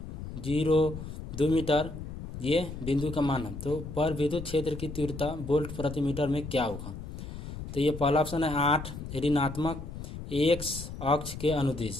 0, 2 मीटर ये बिंदु का मान है। तो पर विद्युत क्षेत्र की तीव्रता वोल्ट प्रति मीटर में क्या होगा? तो ये पहला ऑप्शन है 8 ऋणात्मक x अक्ष के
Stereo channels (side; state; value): left; noise; rumble, 9 dB below the sound